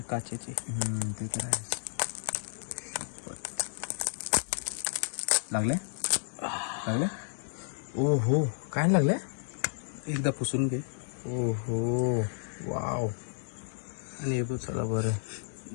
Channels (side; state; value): right; silent; digital silence